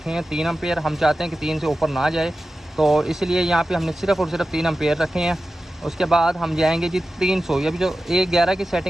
हैं 3 एम्पेयर। हम चाहते हैं कि 3 से ऊपर ना जाए, तो इसलिए यहाँ पे हमने सिर्फ और सिर्फ 3 एम्पेयर रखे हैं। उसके बाद हम जाएंगे जी 300। ये भी जो 111 की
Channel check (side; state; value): both; normal; correlation 0.94